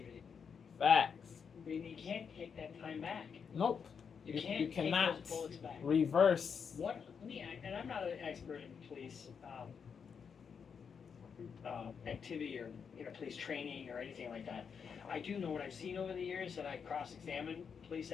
Facts. I mean, you can't take that time back. Nope. You can't You take cannot those bullets back. reverse. And I'm not an expert in police activity or police training or anything like that. I do know what I've seen over the years, and I cross-examine police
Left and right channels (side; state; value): right; quieter; 6.5 dB